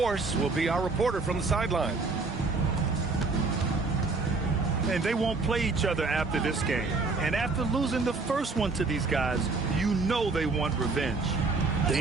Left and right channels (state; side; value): quieter; left; 3.9 dB